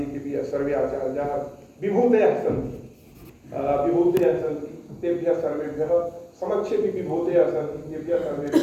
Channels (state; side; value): identical; both; correlation 1.00